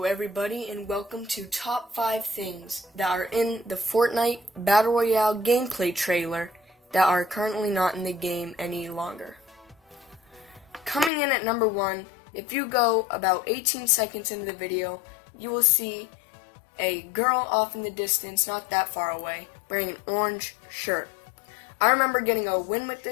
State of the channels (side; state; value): right; drops out; at 11.1 s